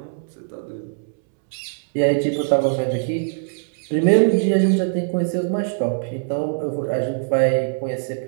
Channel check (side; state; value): left; silent; 64 dB below the other